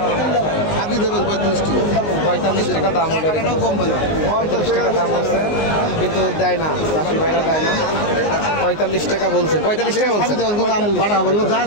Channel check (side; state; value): right; late; 19 ms